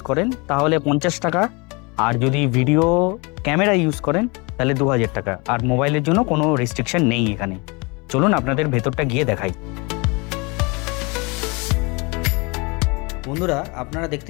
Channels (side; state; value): right; quieter; 28.6 dB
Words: করেন তাহলে 50 টাকা, আর যদি ভিডিও ক্যামেরা ইউজ করেন তাহলে 2000 টাকা। আর মোবাইলের জন্য কোনো রেস্ট্রিকশন নেই এখানে। চলুন আপনাদের ভেতরটা গিয়ে দেখাই। বন্ধুরা, আপনারা